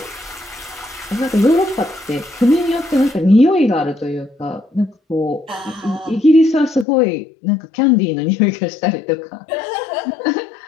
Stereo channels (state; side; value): drops out; right; at 6.9 s